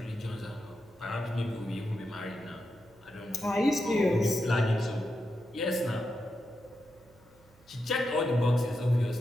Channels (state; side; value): noise; right; hum, 28 dB below the sound